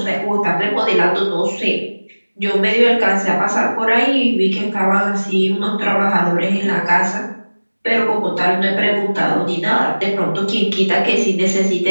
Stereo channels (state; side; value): inverted; both; correlation -1.00